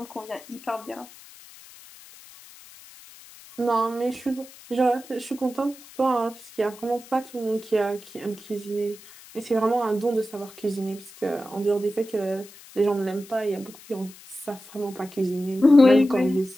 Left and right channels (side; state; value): left; noise; hiss, 20 dB below the sound